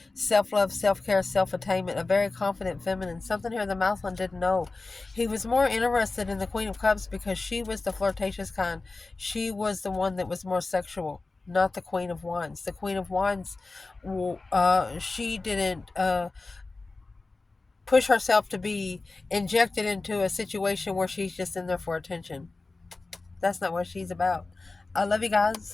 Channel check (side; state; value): right; quieter; 3.5 dB